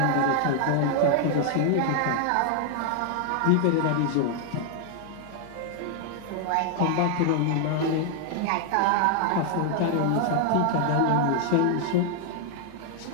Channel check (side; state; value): both; different; correlation 0.00